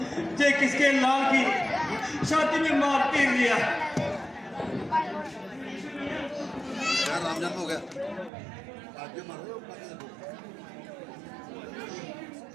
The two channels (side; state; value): left; drops out; at 8.3 s